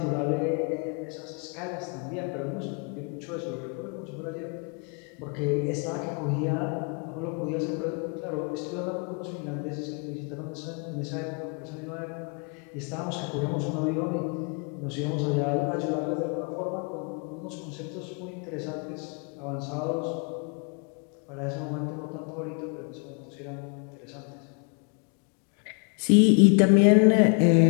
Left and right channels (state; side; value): quieter; right; 37.5 dB